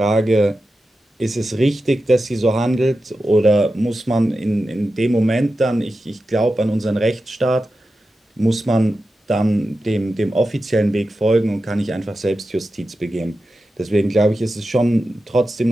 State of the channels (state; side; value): normal; both; correlation 0.91